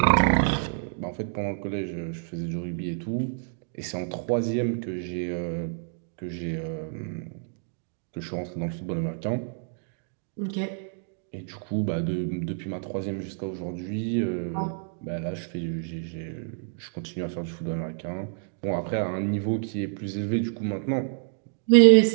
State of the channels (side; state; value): left; silent; digital silence